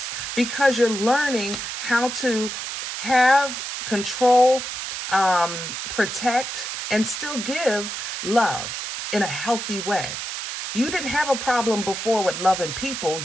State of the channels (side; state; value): right; noise; hiss, 5 dB below the sound